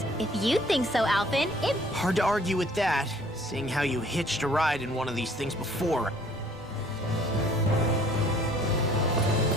If you think so, Alphen, it... Hard to argue with that, seeing how you hitched a ride in one of these things before.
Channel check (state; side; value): normal; both; correlation 0.57